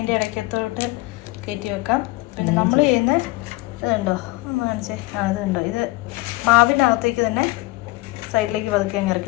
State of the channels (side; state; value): right; quieter; 21.6 dB